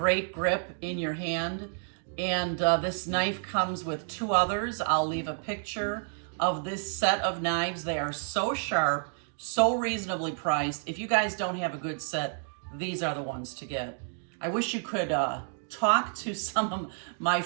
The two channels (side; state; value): left; silent; 58 dB below the other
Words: grip in your hand. And this knife comes with two others. I'll leave a picture of this set of knives. They are so sharp, so reasonably priced. If you guys don't have a good set, these are the ones to get. I wish you could talk to some of my